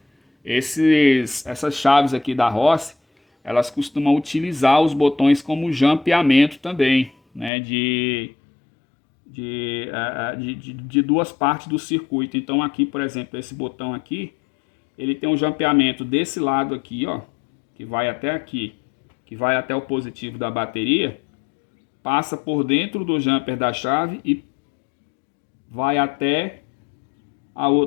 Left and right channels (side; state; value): right; drops out; at 7.5 s